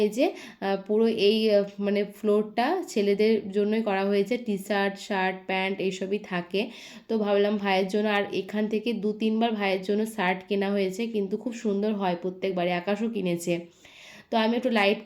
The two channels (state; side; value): identical; both; correlation 1.00